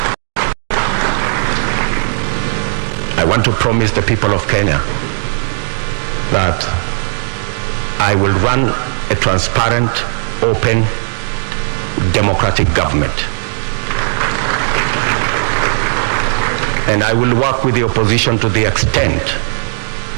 I want to promise the people of Kenya that I will run a transparent, open, democratic government. And I will work with the opposition to the extent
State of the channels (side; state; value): left; silent; digital silence